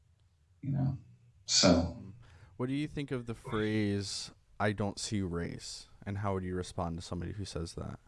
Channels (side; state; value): both; identical; correlation 1.00